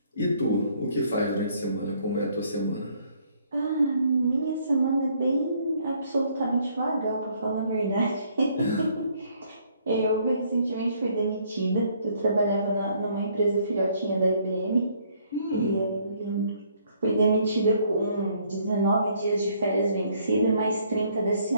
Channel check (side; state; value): both; inverted; correlation -0.65